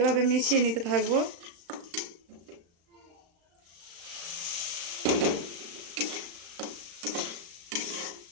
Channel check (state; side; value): late; left; 35 ms